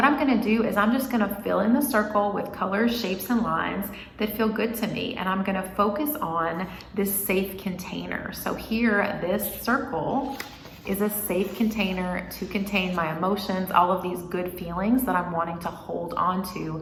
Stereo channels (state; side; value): identical; both; correlation 1.00